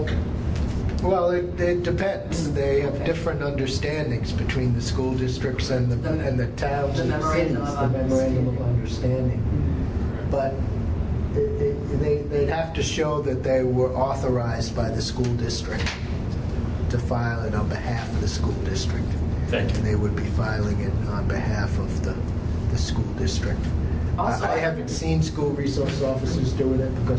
Well, it depends. They have different understandings between the school districts and the towns The and the cities. memorandum of The memorandum of understanding. understanding. But they'd have to show that they were authorized by the school district to file it on behalf of the school district. Thank you. And they would be filing it on behalf of the school district. Also, I haven't seen school resource officers doing it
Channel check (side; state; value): both; identical; correlation 1.00